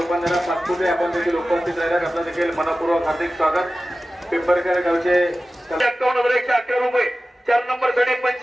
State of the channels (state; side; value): normal; both; correlation 0.95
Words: पाचपुते आपण देखील उपस्थित राहिल्यात. आपलं देखील मनपूर्वक हार्दिक स्वागत. पिंपरखेड गावचे 51,111 रुपये. 4 नंबर साठी